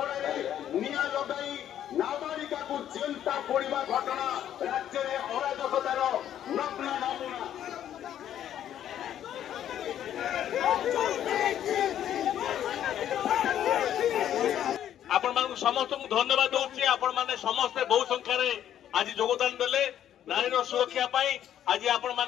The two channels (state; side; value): quieter; right; 10.7 dB